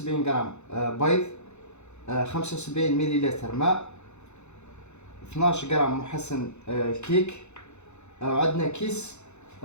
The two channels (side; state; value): right; late; 0.82 ms